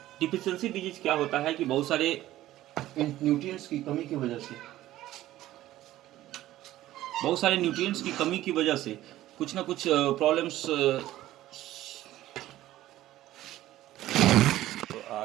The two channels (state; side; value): quieter; left; 14.7 dB